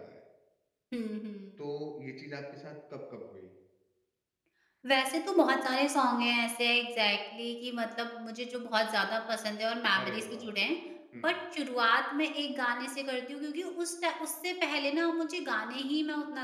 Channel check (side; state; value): both; identical; correlation 1.00